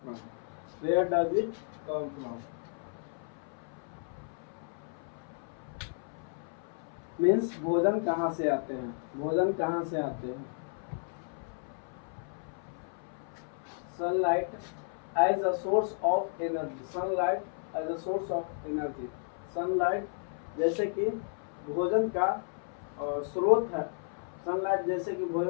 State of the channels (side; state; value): right; silent; 56 dB below the other